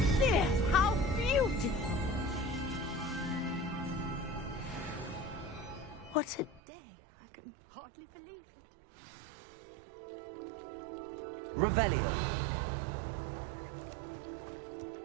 How beautiful! What a day! I can hardly believe it. Revelio!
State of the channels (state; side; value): drops out; left; at 6.6 s